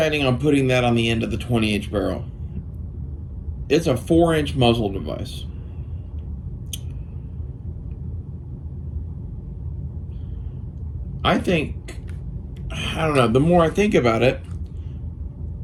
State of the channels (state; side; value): identical; both; correlation 1.00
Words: on putting that on the end of the 20-inch barrel. It's a 4-inch muzzle device. I don't know, the more I think about it,